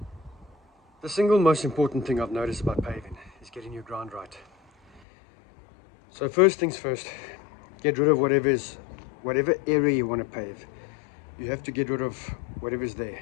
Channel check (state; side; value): drops out; right; at 5.0 s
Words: The single most important thing I've noticed about paving is getting your ground right. So first things first, get rid of whatever area you want to pave. You have to get rid of whatever's there.